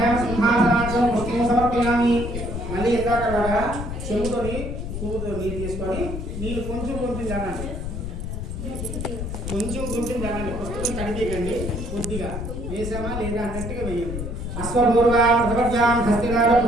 सिंहासनाचं पुष्पं समर्पयामि మళ్ళీ ఎందాకలాగా చెంబుతోని పువ్వుతో నీరు తీసుకొని నీళ్ళు కొంచెం కొంచెం జానండి పుస్తకం కడిగేయండి కొద్దిగా వేసామా లేదా అన్నట్టుగా వేయండి అశ్వపూర్వా ప్రవర్యాం హస్తినార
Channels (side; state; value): left; noise; rumble, 5 dB below the sound